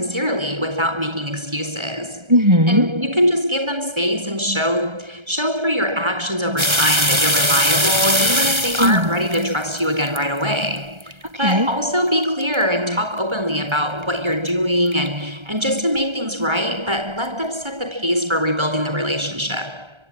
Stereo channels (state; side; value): late; left; 1.3 ms